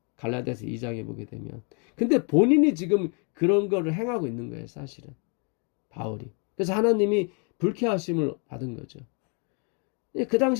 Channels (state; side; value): quieter; right; 36.7 dB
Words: 갈라디아서 2장에 보게 되면. 근데 본인이 지금 그런 거를 행하고 있는 거예요, 사실은. 바울이. 그래서 하나님이 불쾌하심을 받은 거죠. 그